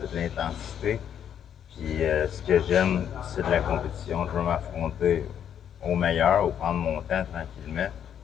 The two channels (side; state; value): right; quieter; 9.1 dB